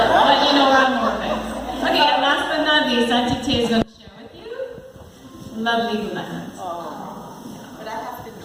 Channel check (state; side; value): identical; both; correlation 1.00